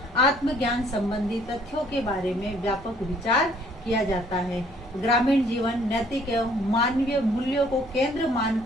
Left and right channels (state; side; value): normal; both; correlation 0.61